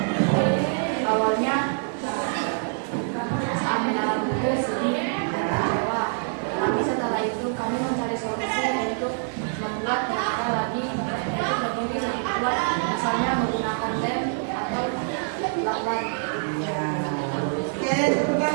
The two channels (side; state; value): left; silent; 61 dB below the other